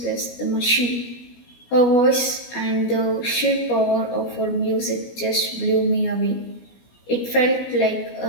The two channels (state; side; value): late; right; 17 ms